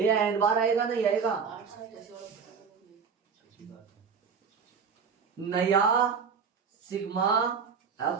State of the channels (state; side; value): quieter; left; 6.0 dB